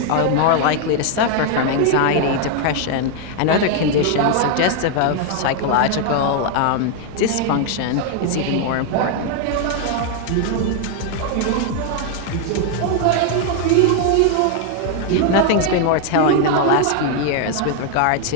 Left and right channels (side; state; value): both; different; correlation 0.00